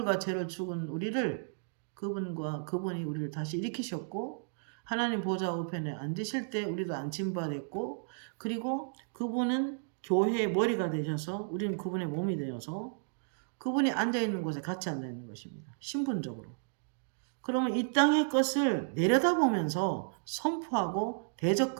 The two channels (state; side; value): silent; left; digital silence